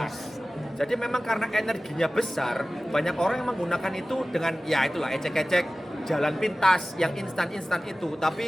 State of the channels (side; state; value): both; normal; correlation 0.97